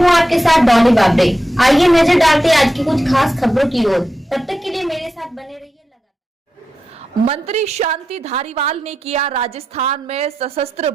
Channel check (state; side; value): normal; both; correlation 0.89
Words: आपके साथ डॉली बाबरे। आइए नजर डालते हैं आज की कुछ खास खबरों की ओर। तब तक के लिए मेरे साथ बने रहिए लगातार। मंत्री शांति धारीवाल ने किया राजस्थान में सशस्त्र